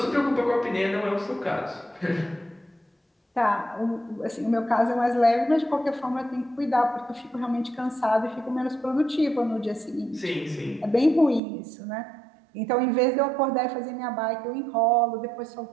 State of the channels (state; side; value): drops out; left; at 11.4 s